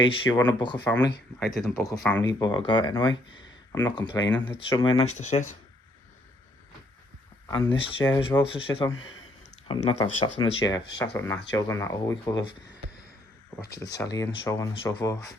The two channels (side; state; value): both; normal; correlation 0.68